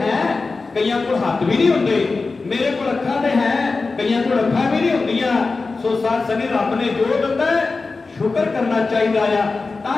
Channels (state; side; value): quieter; right; 3.9 dB